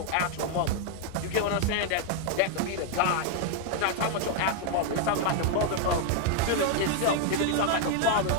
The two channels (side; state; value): both; different; correlation 0.00